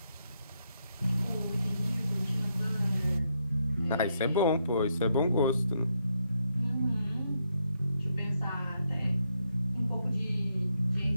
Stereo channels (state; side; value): inverted; both; correlation -0.78